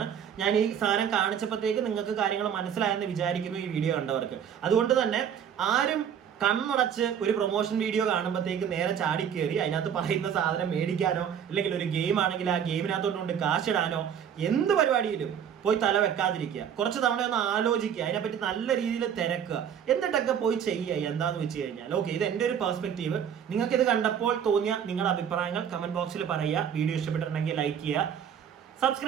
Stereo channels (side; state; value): left; quieter; 8.5 dB